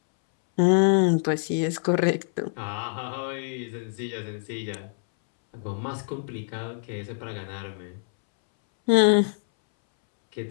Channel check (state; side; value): silent; right; 61 dB below the other